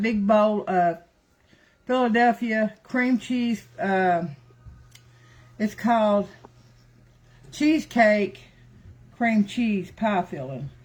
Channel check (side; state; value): both; identical; correlation 1.00